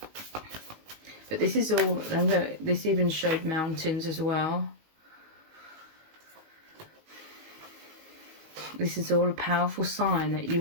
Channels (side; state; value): left; late; 19 ms